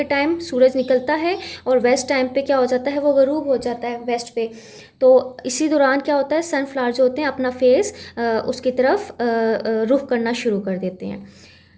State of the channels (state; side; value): identical; both; correlation 1.00